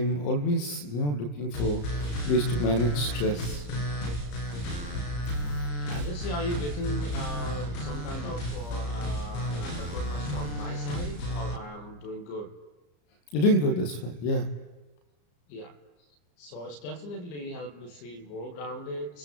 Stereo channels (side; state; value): right; late; 34 ms